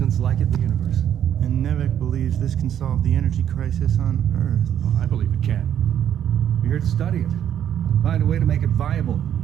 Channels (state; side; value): quieter; left; 9.8 dB